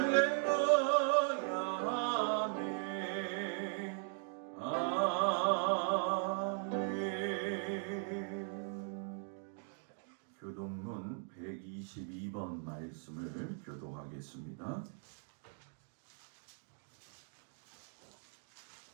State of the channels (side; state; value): left; silent; 52 dB below the other